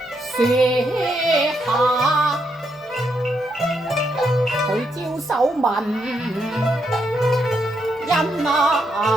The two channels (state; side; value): normal; both; correlation 0.79